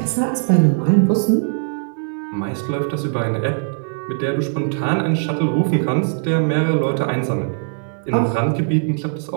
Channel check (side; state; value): left; silent; digital silence